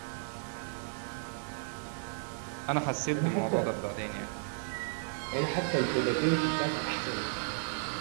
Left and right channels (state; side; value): silent; left; digital silence